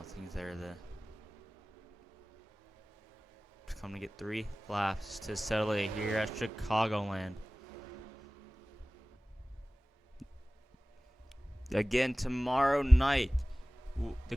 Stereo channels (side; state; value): both; normal; correlation 0.98